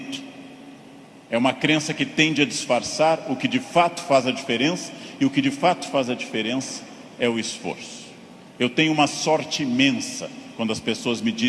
é uma crença que tende a disfarçar o que de fato faz a diferença. E o que de fato faz a diferença é o esforço. Eu tenho uma sorte imensa quando as pessoas me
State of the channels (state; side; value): identical; both; correlation 1.00